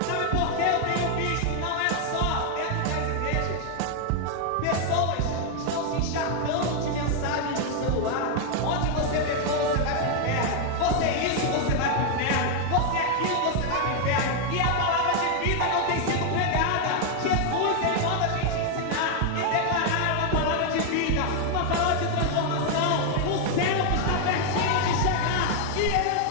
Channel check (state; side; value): different; both; correlation 0.00